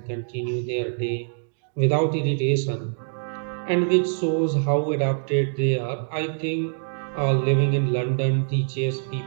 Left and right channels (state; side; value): silent; left; digital silence